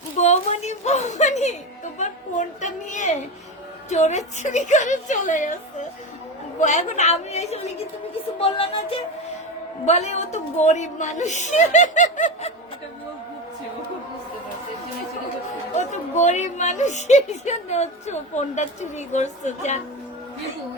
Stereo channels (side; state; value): both; normal; correlation 0.20